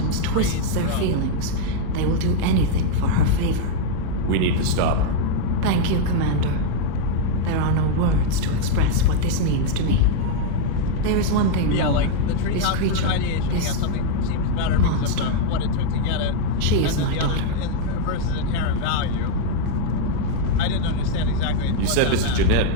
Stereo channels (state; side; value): different; both; correlation -0.01